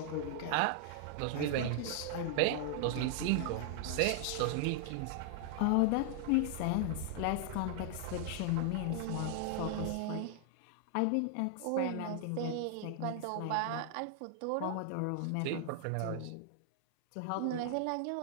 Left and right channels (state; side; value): different; both; correlation 0.00